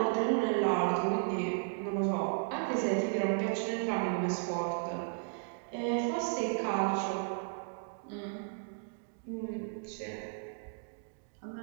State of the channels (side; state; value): left; silent; digital silence